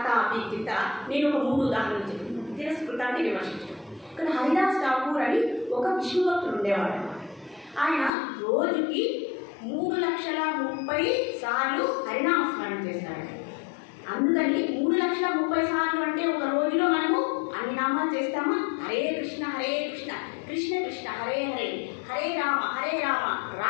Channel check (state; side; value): drops out; right; at 8.1 s